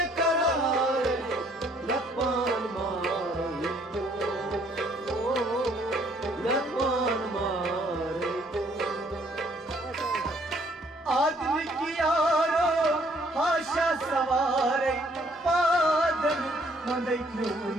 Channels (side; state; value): both; normal; correlation 0.64